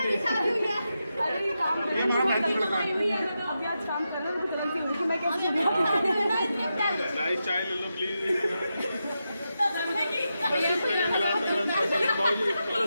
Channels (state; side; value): inverted; both; correlation -0.88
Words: अरे काम अभी आज काम कर रहे हैं, मैं कैसे नाइस चाय ले लो प्लीज।